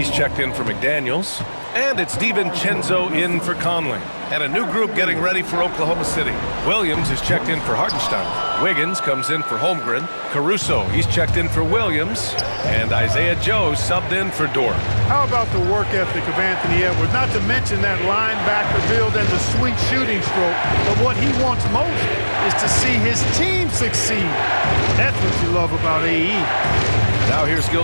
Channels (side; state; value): both; inverted; correlation -1.00